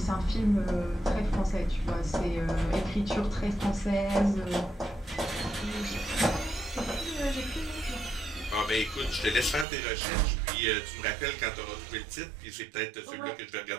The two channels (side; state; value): left; drops out; at 9.7 s